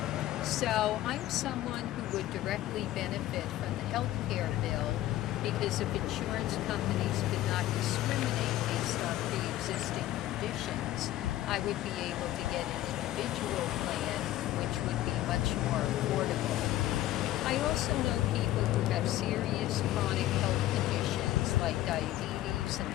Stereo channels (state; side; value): quieter; right; 14.5 dB